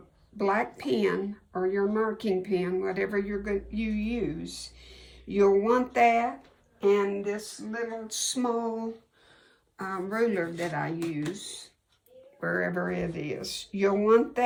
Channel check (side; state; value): both; identical; correlation 1.00